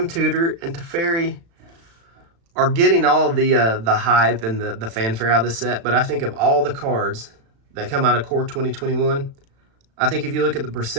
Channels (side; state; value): left; late; 36 ms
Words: Tutor and Teferi are getting all the hype and the fanfare out of this set, but I think of all the cards that come out of Core 2021, I think if you look at the